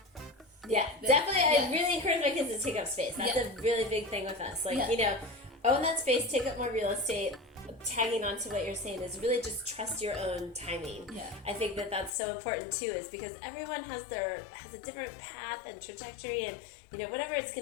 Yeah, definitely. I really encourage my kids to take up space. That's a really big thing with us. Like, own that space, take up more real estate. Tagging on to what you're saying is really just trust your own timing. Yeah. I think that that's so important too, is because everyone has a different path and trajectory, and whatever it's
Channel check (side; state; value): right; drops out; at 12.1 s